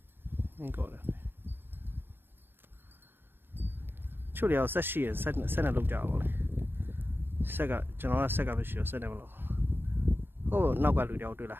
နေကောတယ်ချို့တွေဆက်ရှိရဆက်နဲ့လောက်ကြပါလေဆက်ကကျွန်တော်ကဆက်ကမရှိတော့ဆက်နဲ့မလို့ဟိုနောက်ကလူတယောက်တွေ့လာ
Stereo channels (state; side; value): late; left; 0.10 ms